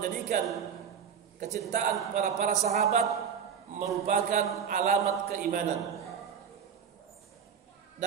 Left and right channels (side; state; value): left; quieter; 7.4 dB